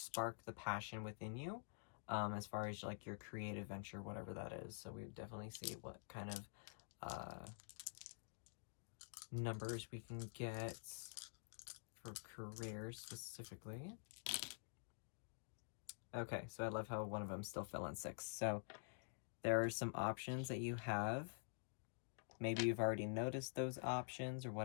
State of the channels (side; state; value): right; silent; digital silence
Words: the passion within you, as far as like your creative venture, whatever that is. So we definitely see what kind of numbers we can get for careers specifically. Okay, so I love how one of them still fell on 6. So there are some options that you have. Maybe you've already noticed those options or